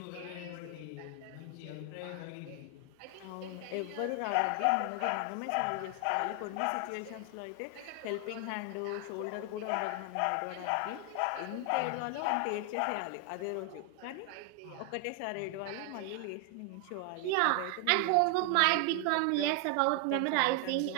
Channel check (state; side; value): different; both; correlation 0.00